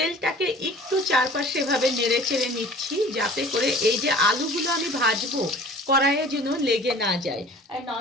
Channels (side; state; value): both; normal; correlation 0.46